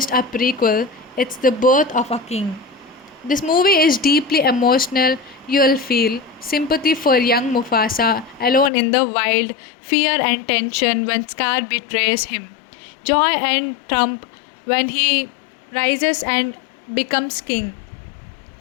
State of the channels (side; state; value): right; drops out; at 8.7 s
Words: a prequel, It's the birth of a king. This movie is deeply emotional. You'll feel sympathy for young Mufasa alone in the wild, fear and tension when Scar betrays him, joy and triumph when he rises and becomes king.